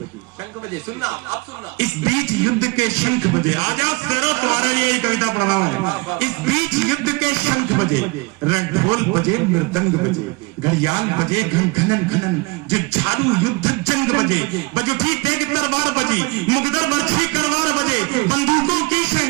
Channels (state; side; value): quieter; left; 26.3 dB